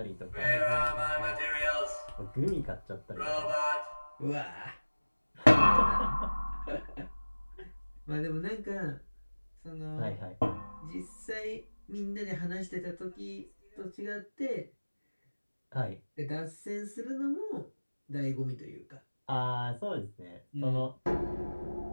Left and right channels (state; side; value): inverted; both; correlation -1.00